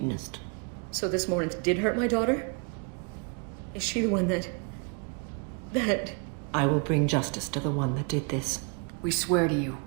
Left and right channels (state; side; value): quieter; left; 36.2 dB